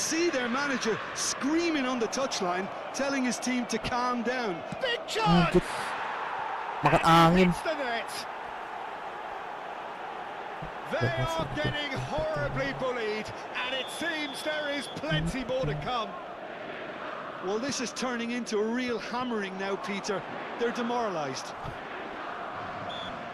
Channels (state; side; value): identical; both; correlation 1.00